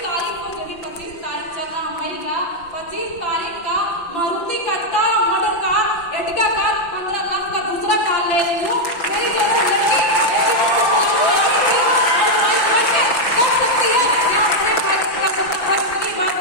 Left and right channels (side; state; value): right; late; 6.0 ms